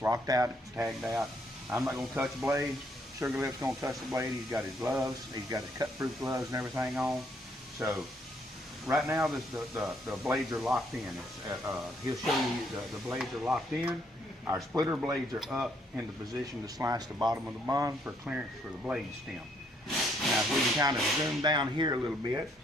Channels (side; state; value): both; normal; correlation 0.70